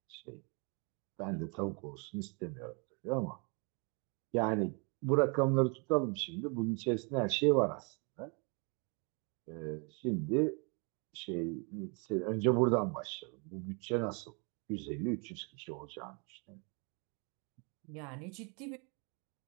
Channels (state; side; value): quieter; left; 34.5 dB